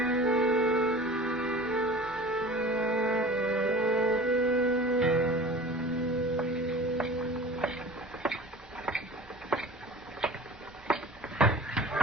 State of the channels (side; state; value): both; normal; correlation 0.39